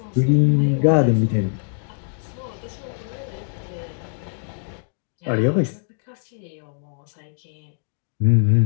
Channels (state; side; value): silent; right; digital silence